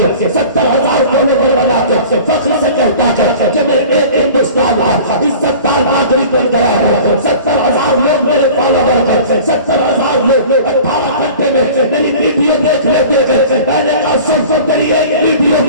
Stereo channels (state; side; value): inverted; both; correlation -0.42